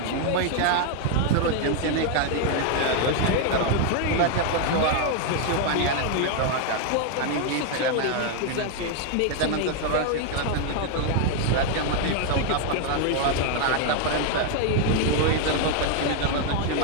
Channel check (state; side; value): different; both; correlation 0.01